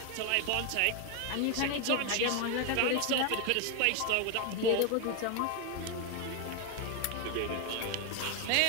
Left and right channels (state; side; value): different; both; correlation 0.01